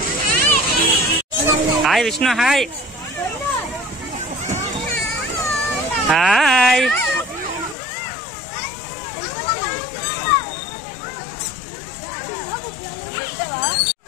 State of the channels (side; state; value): right; drops out; at 7.8 s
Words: Hi Vishnu, hi hi.